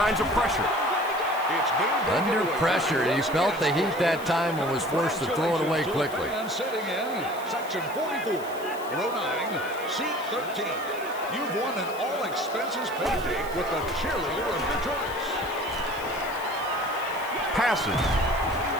of pressure. Under pressure. He felt the heat that time and was forced to throw it away quickly. And sitting in section 44, row 9, seat 13. You've won an all-expenses paid date with the cheerleader of your choice. Passes.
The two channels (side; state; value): left; noise; hiss, 18 dB below the sound